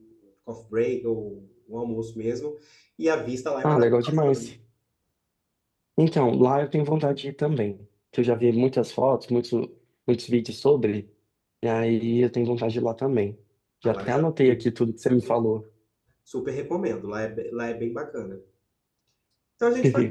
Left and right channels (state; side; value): identical; both; correlation 1.00